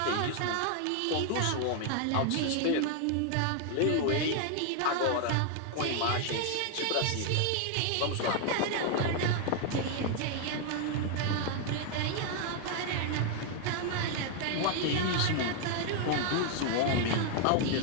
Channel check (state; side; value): different; both; correlation 0.00